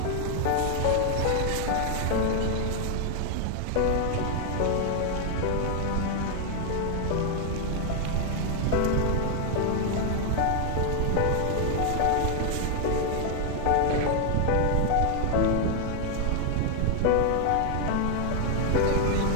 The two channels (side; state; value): both; different; correlation 0.00